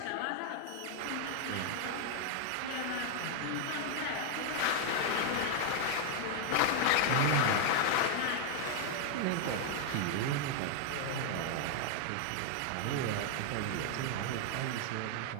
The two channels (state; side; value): different; both; correlation 0.00